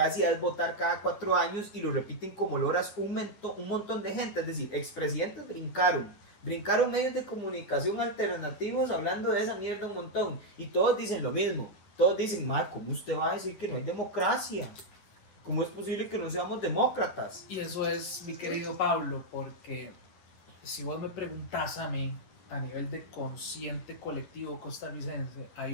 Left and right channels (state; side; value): late; right; 10 ms